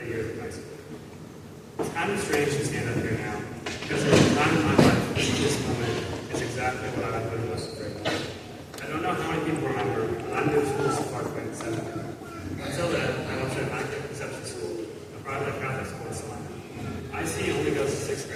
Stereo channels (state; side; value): identical; both; correlation 1.00